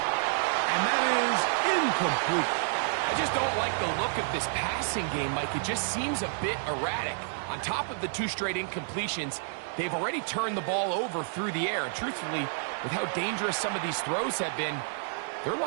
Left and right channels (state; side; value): silent; left; 58 dB below the other